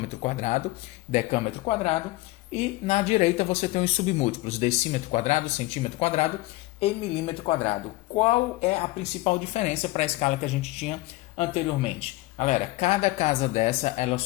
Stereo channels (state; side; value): quieter; right; 19.7 dB